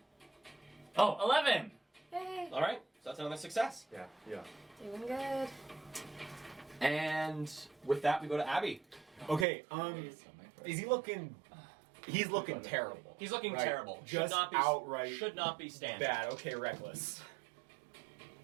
Oh, 11. Hey. All right, so that's another success. Yeah. Yeah. Doing good. And with that, we go to Abby. Okay, is he looking... He's looking terrible. He's looking Right. terrible. Just outright Should not be standing. bad. Okay, reckless.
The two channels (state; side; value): drops out; left; at 9.5 s